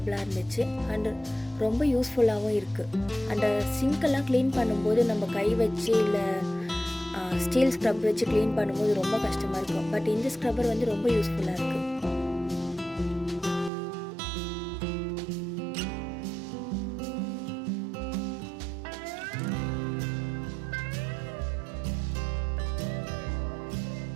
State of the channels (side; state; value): left; drops out; at 13.7 s